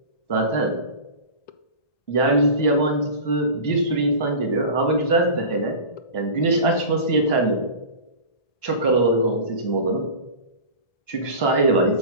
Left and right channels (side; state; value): right; late; 1.1 ms